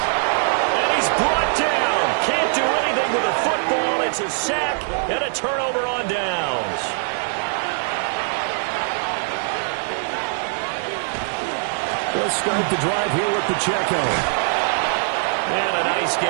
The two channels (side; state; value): left; silent; 61 dB below the other